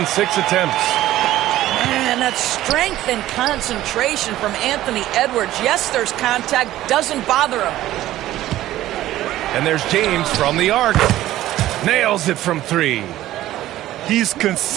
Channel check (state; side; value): quieter; left; 14.5 dB